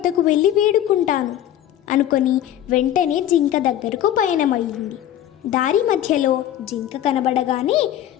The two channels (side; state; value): right; quieter; 11.6 dB